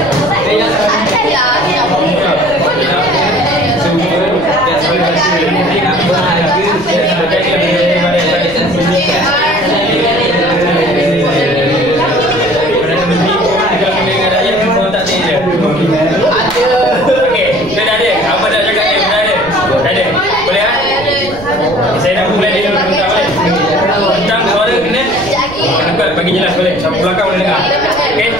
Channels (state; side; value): noise; right; rumble, 16 dB below the sound